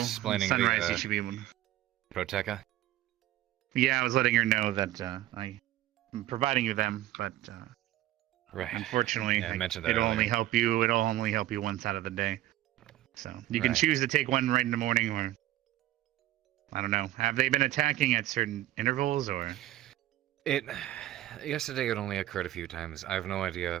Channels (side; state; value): left; quieter; 14.6 dB